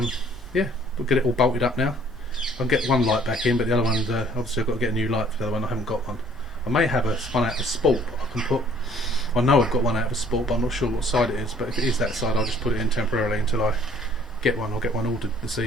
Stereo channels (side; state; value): both; normal; correlation 0.57